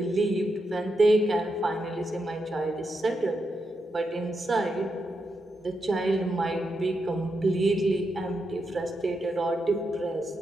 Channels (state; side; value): normal; both; correlation 0.84